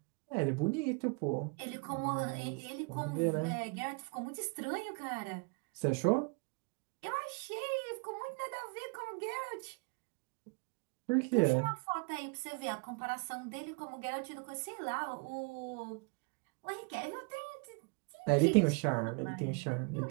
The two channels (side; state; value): left; quieter; 32.6 dB